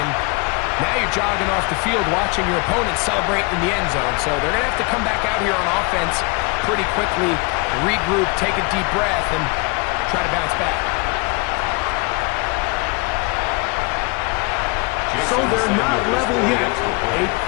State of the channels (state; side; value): quieter; right; 29.1 dB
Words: and now you're jogging off the field watching your opponent celebrate in the end zone. So they're going to have to come back out here on offense pretty quickly, regroup, take a deep breath, and try to bounce back. So they're not level yet. A